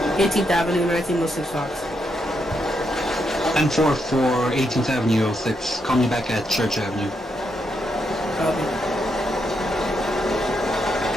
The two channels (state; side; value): normal; both; correlation 0.80